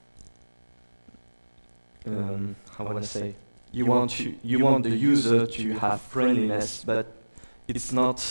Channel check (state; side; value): inverted; both; correlation -1.00